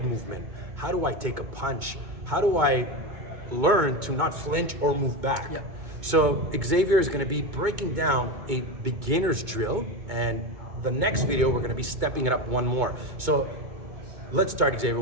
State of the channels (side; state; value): left; late; 2.2 ms